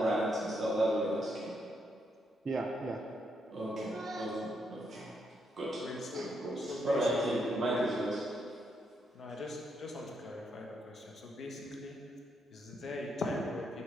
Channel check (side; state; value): both; normal; correlation 0.78